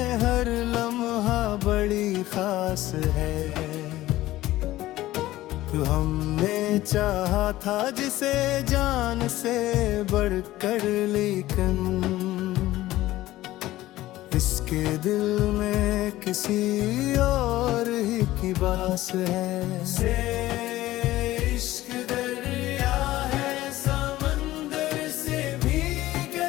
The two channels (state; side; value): quieter; right; 16.1 dB